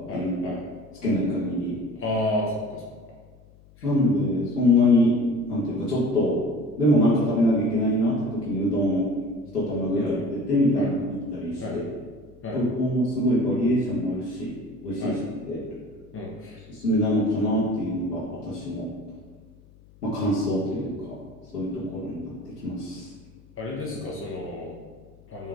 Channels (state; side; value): noise; left; hum, 26 dB below the sound